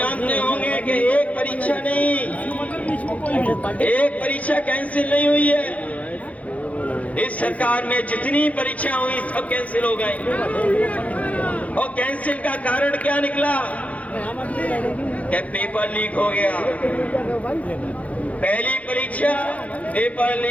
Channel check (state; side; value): late; right; 0.067 ms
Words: होंगे कि एक परीक्षा नहीं, एक परीक्षा कैंसिल नहीं हुई है। इस सरकार में जितनी परीक्षा हुई सब कैंसिल हो गई। और कैंसिल का कारण क्या निकला? कि पेपर लीक हो गया। पहली परीक्षा पेपर